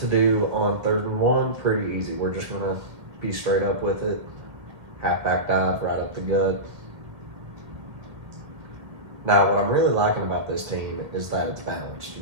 do on 3rd and 1? Pretty easy. We're just going to be straight up with it. Halfback dive right up the gut. Now, what I'm really liking about this team is that it's balanced.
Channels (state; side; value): late; left; 1.6 ms